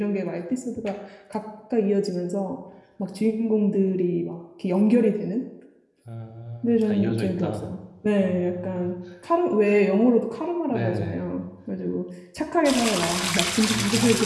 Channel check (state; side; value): identical; both; correlation 1.00